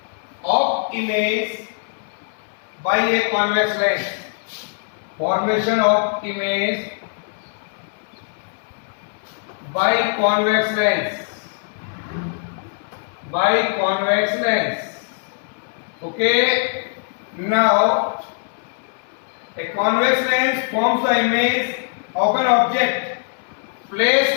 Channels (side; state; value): right; silent; 59 dB below the other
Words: a convex lens. Formation of image by convex lens. Okay, now a convex lens forms the image of an object